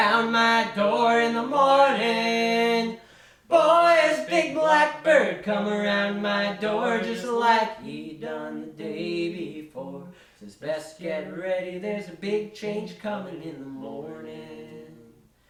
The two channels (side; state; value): both; identical; correlation 1.00